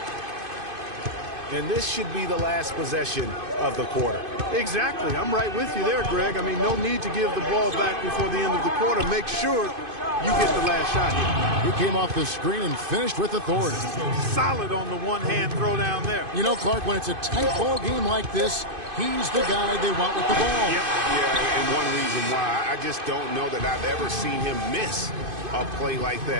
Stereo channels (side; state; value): left; late; 2.5 ms